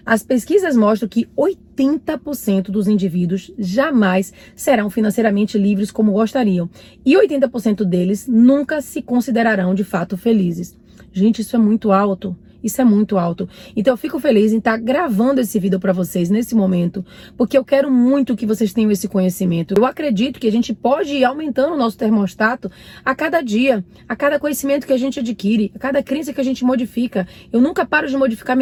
As pesquisas mostram que 80% dos indivíduos jamais serão financeiramente livres como gostariam, e 80% deles nunca se considerarão de fato felizes. Gente, isso é muito alto. Isso é muito alto. Então eu fico feliz em estar gravando esse vídeo para vocês nesse momento, porque eu quero muito que vocês tenham esse conhecimento. Eu acredito que a gente pode ir aumentando o nosso termostato a cada dia, a cada conhecimento que a gente adquire, a cada crença que a gente modifica. Eu nunca paro de modificar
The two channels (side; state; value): both; identical; correlation 1.00